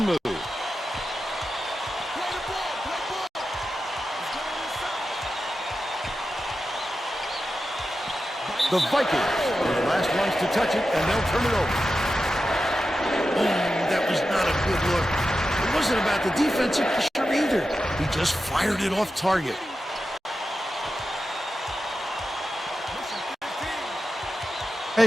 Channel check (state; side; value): normal; both; correlation 0.91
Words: move. The Vikings are the last ones to touch it, and they'll turn it over. That was not a good look. It wasn't about the defensive pressure either. He just fired it off target. Hey,